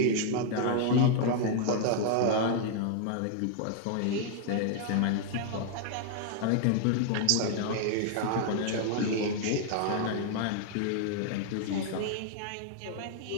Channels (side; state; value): both; different; correlation 0.00